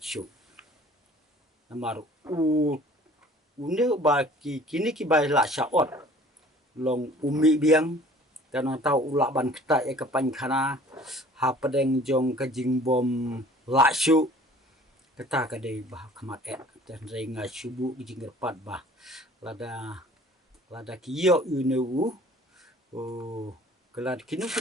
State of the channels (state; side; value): normal; both; correlation 0.50